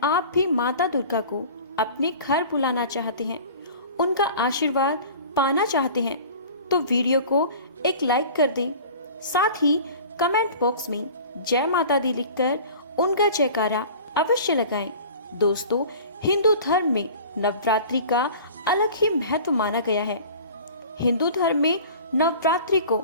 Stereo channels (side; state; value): both; inverted; correlation -0.42